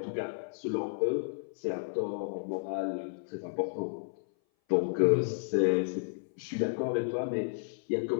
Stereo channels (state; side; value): silent; right; 56 dB below the other